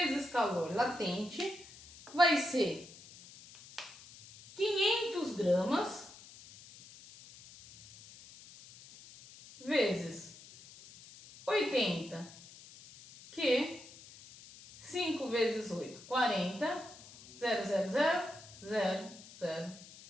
calor latente, vai ser 500 gramas vezes 80, que 5 vezes 8, 40, 0,00000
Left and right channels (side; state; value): left; noise; hiss, 19 dB below the sound